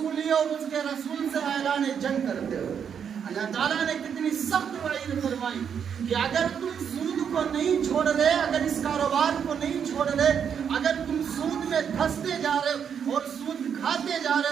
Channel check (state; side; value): quieter; left; 7.7 dB